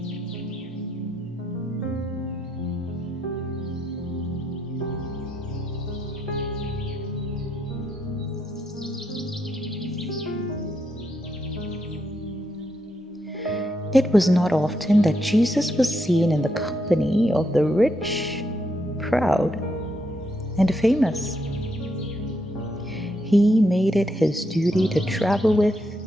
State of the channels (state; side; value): normal; both; correlation 0.79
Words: It was not often that Jesus was seen in the company of the rich, proud, and famous. He made it his duty to travel with